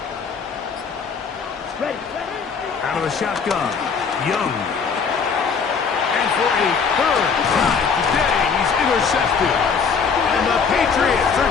Ready. Out of the shotgun, Young. And for a 3rd time today, he's intercepted. And the Patriots are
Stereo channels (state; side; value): quieter; right; 5.8 dB